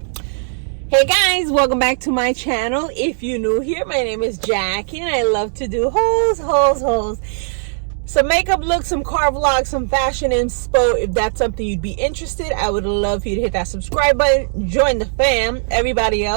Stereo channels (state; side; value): silent; left; digital silence